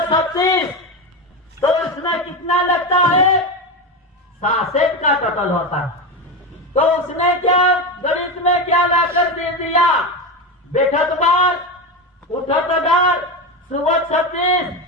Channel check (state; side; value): normal; both; correlation 0.17